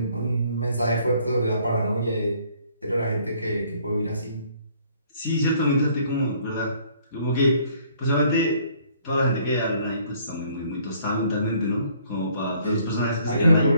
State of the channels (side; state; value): both; inverted; correlation -0.61